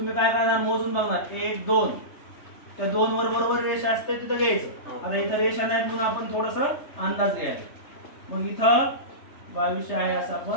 काय करणार? मोजून बघणार 1 2. त्या 2 वर बरोबर रेषा असते तिथं घ्यायचं. आता इथं रेषा नाही म्हणून आपण थोडंसं अंदाज घ्यायचा. मग इथं 2200 आहे असं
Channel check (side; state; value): right; late; 3.3 ms